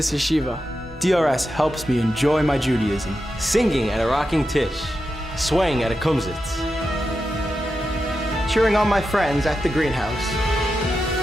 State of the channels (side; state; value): both; normal; correlation 0.89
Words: yeshiva. DRS helps me enjoy my Judaism. Singing at a rocking tish, swaying at a kumsitz. Cheering on my friends at the greenhouse.